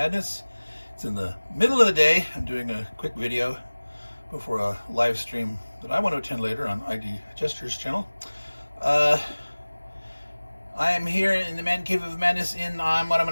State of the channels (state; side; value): inverted; both; correlation -1.00